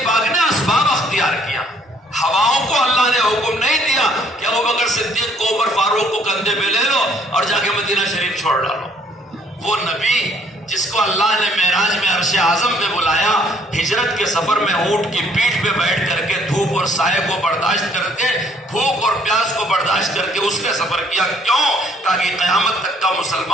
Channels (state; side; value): normal; both; correlation 0.62